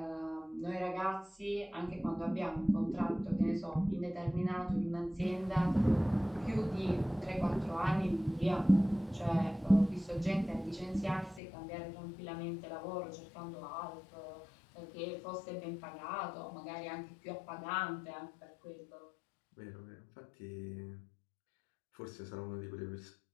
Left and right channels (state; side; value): drops out; right; at 11.4 s